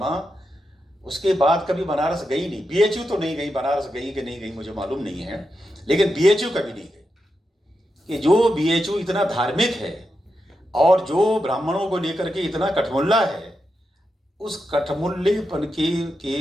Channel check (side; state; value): both; normal; correlation 0.87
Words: उसके बाद कभी बनारस गई नहीं। बीएचयू तो नहीं गई, बनारस गई कि नहीं गई मुझे मालूम नहीं है, लेकिन बीएचयू कभी नहीं गई। कि जो बीएचयू इतना धार्मिक है और जो ब्राह्मणों को लेकर के इतना कठमुल्ला है, उस कठमुल्लेपन